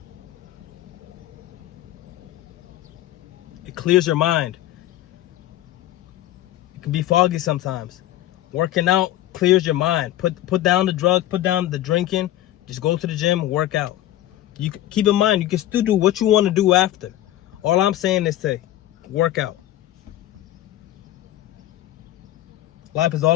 It clears your mind. It can be foggy sometimes. Working out clears your mind. Put down the drugs, put down the drinking. Just go to the gym, work out. You keep in mind, you can still do what you want to do after. All I'm saying is to work out. Life is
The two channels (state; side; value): quieter; right; 13.9 dB